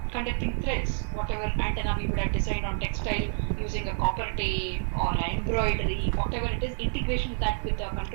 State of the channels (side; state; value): left; silent; 59 dB below the other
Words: conducting threads, whatever antenna we would have designed on textile using a copper tape or an embroidery, whatever it is, integration with that with the